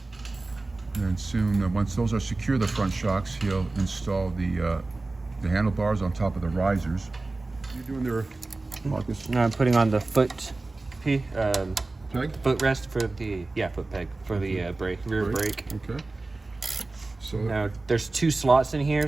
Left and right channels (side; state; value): left; quieter; 3.3 dB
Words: And soon, once those are secure, the front shocks, he'll install the handlebars on top of the risers. What are you doing there, Marcus? No, I'm putting on the foot Peg? footrest for the foot peg for the rear brake. Okay. So now there's two slots in here,